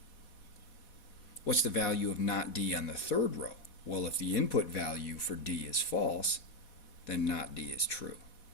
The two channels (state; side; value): late; right; 4.1 ms